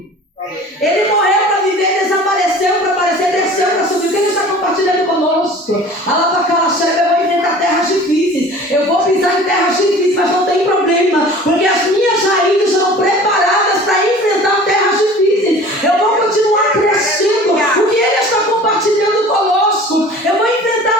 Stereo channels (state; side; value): normal; both; correlation 0.43